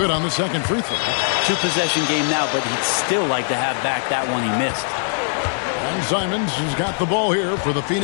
on the second free throw. 2-possession game now, but he'd still like to have back that one he missed. And Simons has got the ball here for the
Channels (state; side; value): silent; right; 62 dB below the other